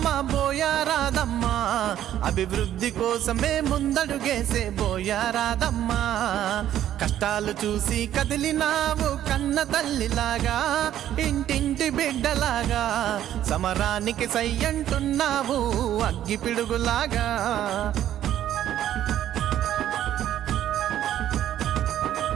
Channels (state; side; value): quieter; left; 11.6 dB